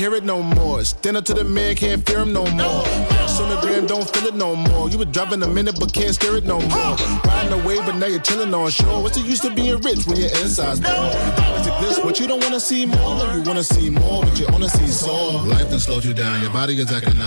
it no more. Stand up to the man, can't fear him no more. Sonogram don't feel it no more. You were driving a minute but can't steer it no more. Riding away but now you're chilling on shore. What's the use of being rich when your inside's poor? Is it this what you don't wanna see more? No, you wanna see more, but you wanna see soul. Life done slowed you down. Your body is acting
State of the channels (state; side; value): inverted; both; correlation -1.00